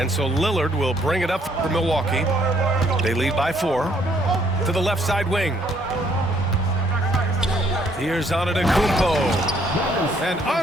so Lillard will bring it up for Milwaukee. They lead by 4 to the left side wing. Here's Antetokounmpo. And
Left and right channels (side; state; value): both; normal; correlation 0.66